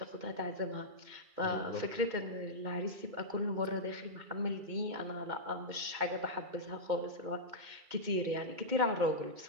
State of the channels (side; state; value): left; late; 2.1 ms